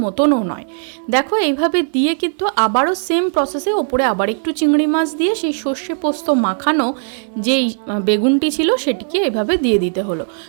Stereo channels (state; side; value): silent; left; digital silence